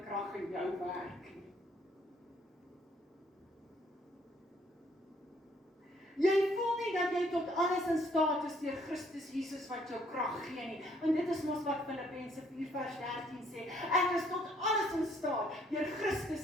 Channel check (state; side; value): normal; both; correlation 0.65